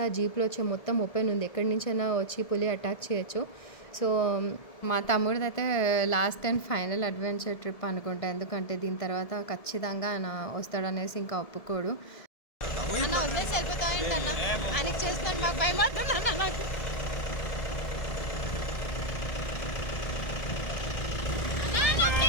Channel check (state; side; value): late; right; 1.7 ms